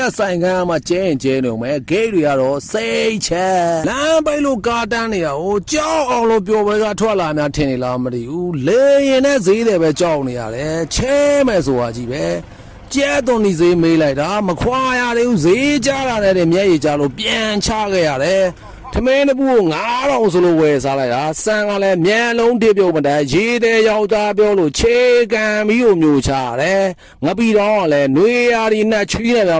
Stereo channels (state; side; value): identical; both; correlation 1.00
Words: ဆိုင်ကမ်းမှာကျဲရင်ကျဲနေုံပဲဂိမ်းတွေကတော့စိတ်ချက်လမ်းပိတ်လို့ကားတန်းနေတာဟိုကြောက်အောင်လို့ပြောပွဲကထွက်လာများထင်နေလားမသိဘူးလေရင်နဲ့ဈေးတယ်ပဲကြောက်နေရတယ်ချဲမယ်ဆိုတာကြီးပဲကျဲသွန်ဒီဈေးမေးလိုက်တာမခွာရသေးဘူးဈေးကြလာတဲ့မျက်ရည်ကြလို့ပြန်ချခဲ့ရတယ်ထမင်းတပူကို9000ဆိုလို့ဝယ်စားလိုက်တာစံကလည်းမြန်လုံးတစ်ပြုတ်မတန်းရေးတဲ့ယောက်သားပြောလို့ခြေကန်ပြီးကိုမျိုးချရတယ်ငပီတော့ကလည်းနှွေရာဒီနဲ့ချွေးနေတာ